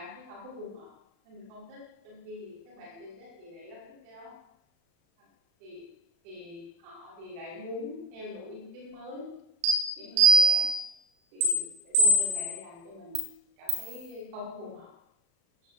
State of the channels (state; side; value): late; left; 35 ms